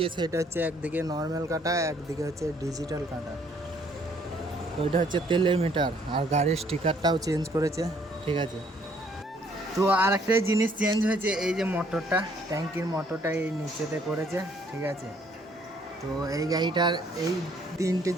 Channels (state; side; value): normal; both; correlation 0.64